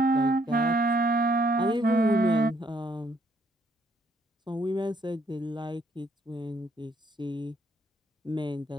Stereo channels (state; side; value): normal; both; correlation 0.69